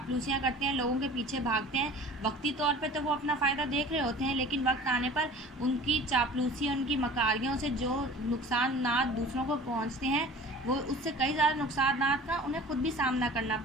करते हैं, लोगों के पीछे भागते हैं, वक्ती तौर पे तो वो अपना फ़ायदा देख रहे होते हैं, लेकिन वक्त आने पर उनकी चापलूसी, उनकी मकारियों से जो नुकसान दूसरों को पहुंचते हैं, वो उससे कई ज़्यादा नुकसान का उन्हें खुद भी सामना करना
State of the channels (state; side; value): normal; both; correlation 0.43